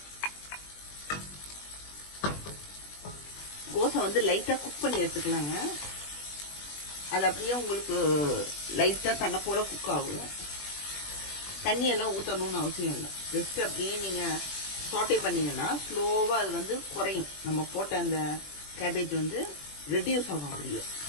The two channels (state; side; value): late; right; 20 ms